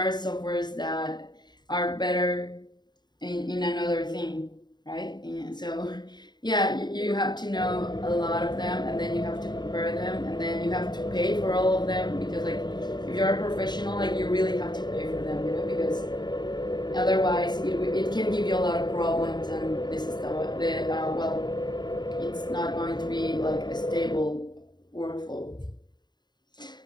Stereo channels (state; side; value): late; right; 0.21 ms